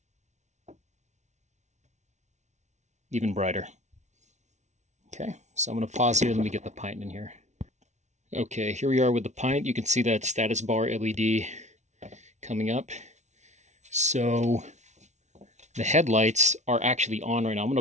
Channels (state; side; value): late; left; 0.33 ms